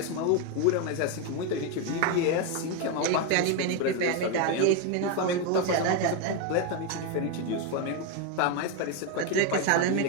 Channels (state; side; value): different; both; correlation 0.02